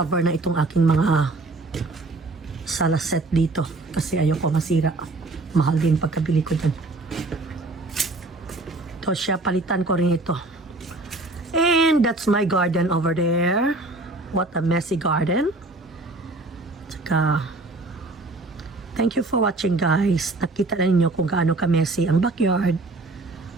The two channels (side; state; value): left; quieter; 3.0 dB